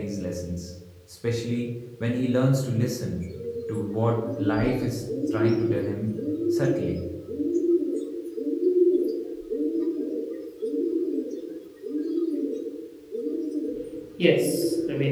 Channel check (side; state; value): both; identical; correlation 1.00